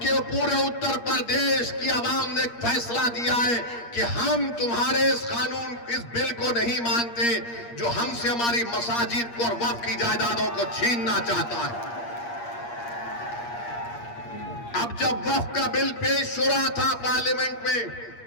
पूरे उत्तर प्रदेश की आवाम ने फैसला दिया है कि हम तुम्हारे इस कानून, इस बिल को नहीं मानते जो हमसे हमारी मसाजिद को और वक्फ की जायदादों को छीनना चाहता है। अब जब वक्फ का बिल पेश हो रहा था पार्लियामेंट में,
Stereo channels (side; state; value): right; late; 8.5 ms